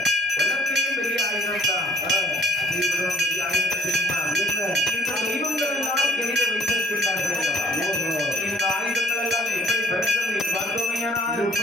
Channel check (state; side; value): normal; both; correlation 0.54